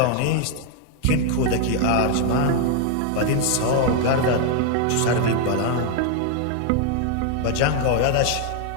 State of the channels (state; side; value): different; both; correlation 0.00